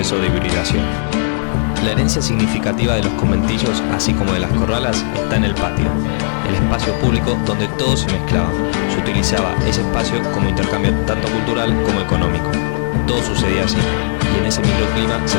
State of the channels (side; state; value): right; silent; digital silence